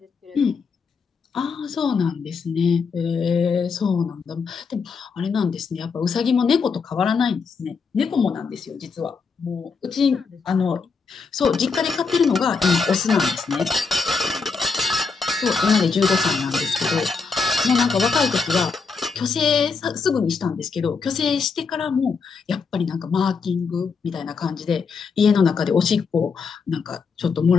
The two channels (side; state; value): right; quieter; 5.1 dB